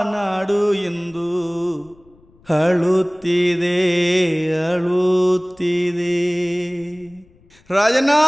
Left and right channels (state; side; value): noise; left; rumble, 30 dB below the sound